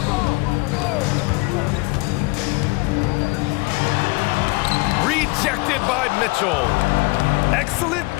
Rejected by Mitchell. Excellent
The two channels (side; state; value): right; quieter; 25.7 dB